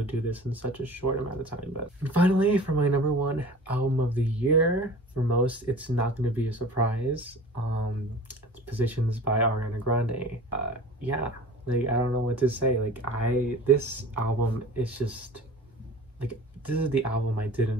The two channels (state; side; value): normal; both; correlation 0.41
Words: do this in such a short amount of time. But finally, for my number 1 album of the year, for most, it's not going to be a surprise. It's Positions by Ariana Grande. Yeah, like, I don't know what to say. Like, this album is just like, this is the album I didn't